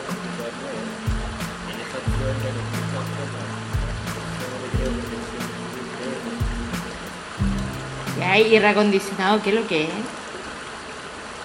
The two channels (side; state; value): both; identical; correlation 1.00